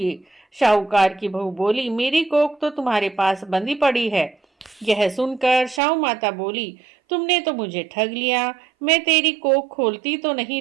शाहूकार की बहू बोली, मेरी कोख तो तुम्हारे पास बंधी पड़ी है। यह सुनकर शाहू माता बोली, तुमने तो मुझे ठग लिया। मैं तेरी कोख खोलती तो नहीं,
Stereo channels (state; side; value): drops out; left; at 5.8 s